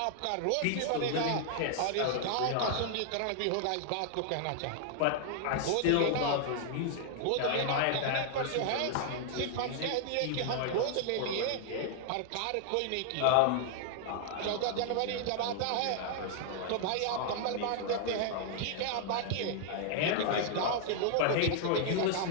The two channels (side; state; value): both; different; correlation 0.00